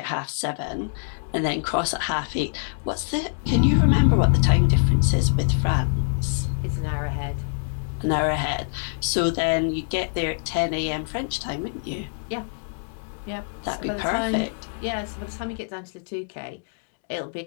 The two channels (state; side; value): silent; right; digital silence